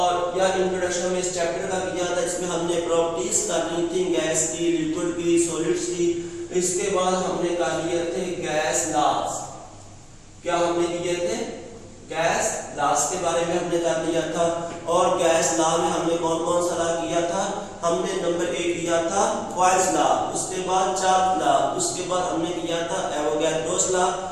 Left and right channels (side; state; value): both; identical; correlation 1.00